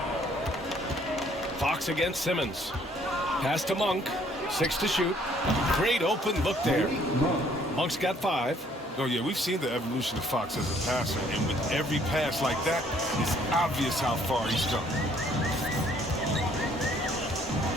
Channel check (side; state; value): both; normal; correlation 0.62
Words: Fox against Simmons. Pass to Monk. 6 to shoot. Great open look there. Monk's got 5. Oh, yeah, we've seen the evolution of Fox as a passer, and with every pass like that, it's obvious how far he's come.